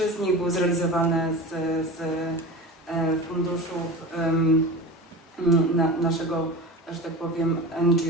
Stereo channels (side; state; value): both; normal; correlation 0.32